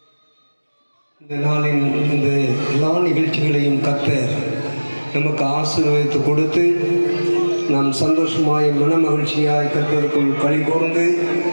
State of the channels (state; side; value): inverted; both; correlation -1.00